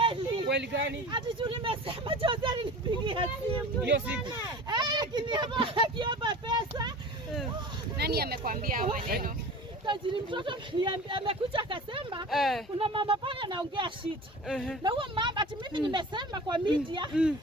Ukweli gani? Ati juu nimesema Jose alinipigia simu. Hiyo siku. Akiomba pesa. Nani amekwambia hayo maneno? Tajiri mtoto amekuja akasema kuna mama pale anaongea shit. Na huyo mama ati mimi nimesema kwa media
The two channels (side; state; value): both; normal; correlation 0.37